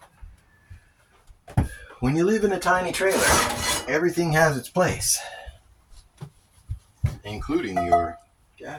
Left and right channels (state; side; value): identical; both; correlation 1.00